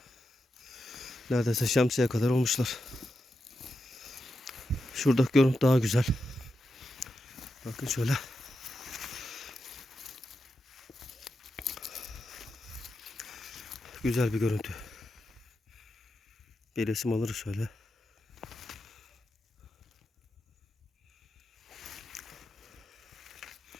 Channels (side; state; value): both; normal; correlation 0.88